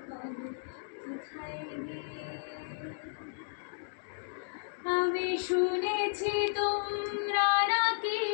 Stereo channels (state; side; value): silent; right; digital silence